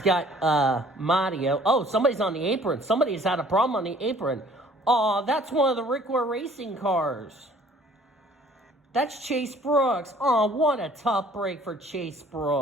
got Mario. Oh, somebody's on the apron. Somebody's had a problem on the apron. Oh, that's one of the Rick Ware Racing cars. That's Chase Brooks. Oh, what a tough break for Chase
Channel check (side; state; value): both; normal; correlation 0.54